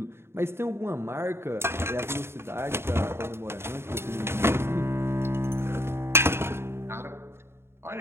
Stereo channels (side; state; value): left; late; 0.12 ms